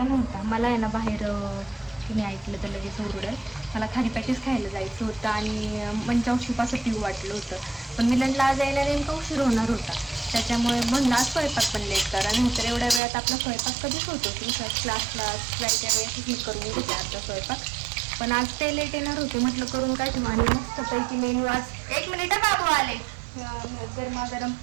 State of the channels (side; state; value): left; drops out; at 13.0 s